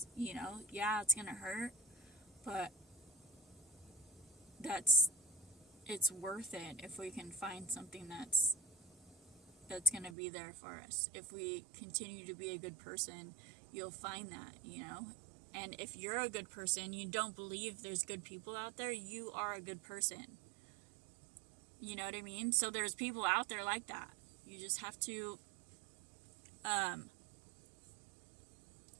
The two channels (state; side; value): drops out; left; at 10.2 s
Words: You know, yeah, it's gonna hurt, but it's worth it if we can find something that's gonna be there for us. If we continue to be a good person, you'll find that, you know. And if you're a good person, you don't believe there's good people out there, you are a good person. You know what I mean? So there's people out there like that. You just have to